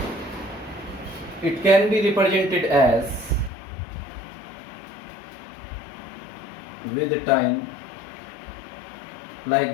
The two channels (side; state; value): right; drops out; at 3.5 s